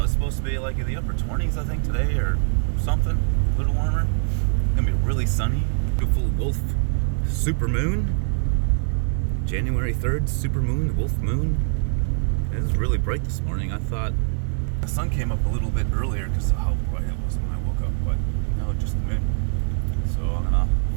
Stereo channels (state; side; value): silent; left; digital silence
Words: It's supposed to be like in the upper 20s, I think, today or something, a little warmer. It's gonna be really sunny. Beautiful wolf super moon. January 3rd, super moon, wolf moon. It was really bright this morning. I thought the sun came up a little bit earlier because of how bright it was when I woke up, but no, just the moon. So I'm gonna